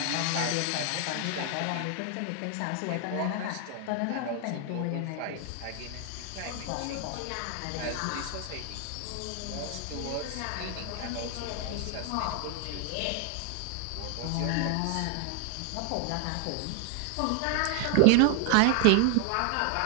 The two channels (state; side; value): different; both; correlation 0.01